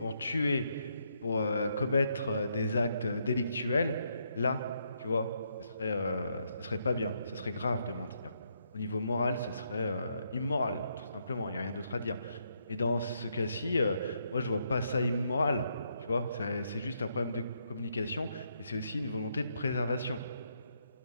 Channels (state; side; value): inverted; both; correlation -0.77